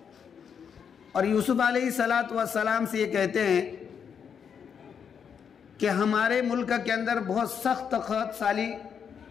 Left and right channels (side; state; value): right; quieter; 7.2 dB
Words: اور یوسف علیہ السلام سے یہ کہتے ہیں کہ ہمارے ملک کے اندر بہت سخت قحط سالی